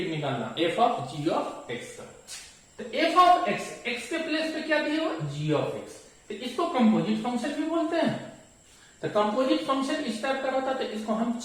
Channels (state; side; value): identical; both; correlation 1.00